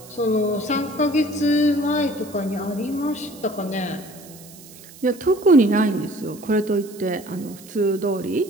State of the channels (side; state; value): right; noise; hiss, 20 dB below the sound